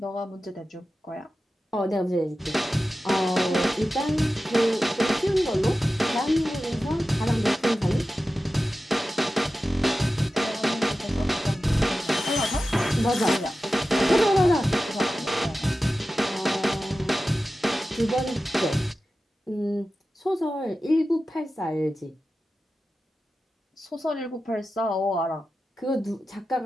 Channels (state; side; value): normal; both; correlation 0.93